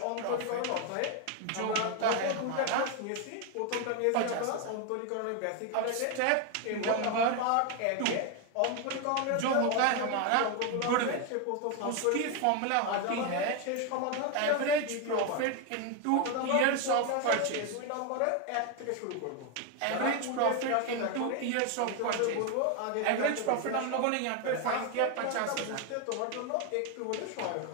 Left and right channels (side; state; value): both; different; correlation 0.01